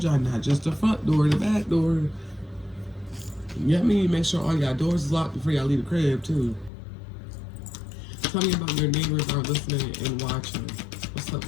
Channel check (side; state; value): right; drops out; at 6.7 s